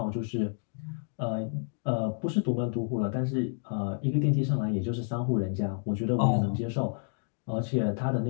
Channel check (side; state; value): right; silent; 58 dB below the other